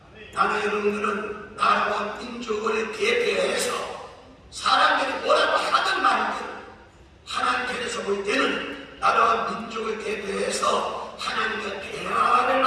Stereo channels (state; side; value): identical; both; correlation 1.00